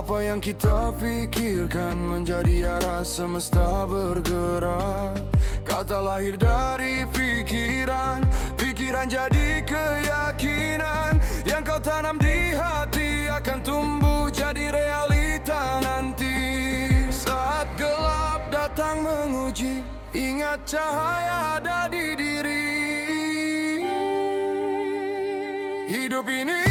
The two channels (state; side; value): identical; both; correlation 1.00